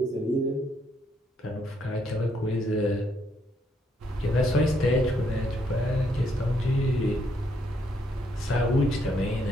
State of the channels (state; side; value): normal; both; correlation 0.73